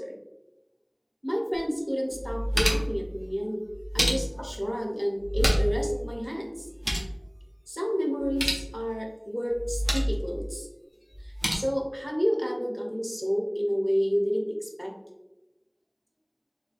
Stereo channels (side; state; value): both; identical; correlation 1.00